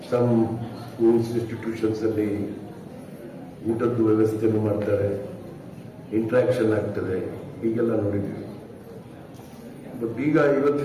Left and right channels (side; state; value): both; identical; correlation 1.00